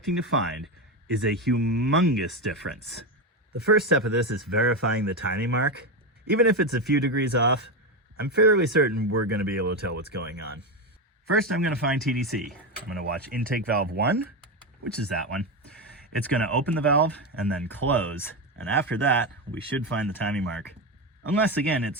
to find is a humongous difference. The first step of this is verifying the timing mark. Even if it's a few degrees off, I'm fairly certain we're going to be able to tell what's going on. First, I'm going to find TDC. I'm going to watch intake valve 1, which is that one. It's going to open the valve and then close, and after that, we should find the timing mark. Unless, again,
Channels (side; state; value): both; normal; correlation 0.13